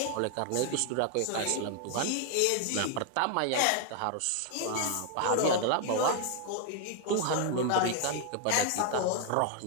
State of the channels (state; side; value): different; both; correlation 0.00